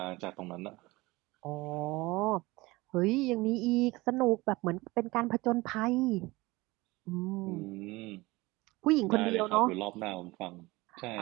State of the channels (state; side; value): quieter; left; 21.5 dB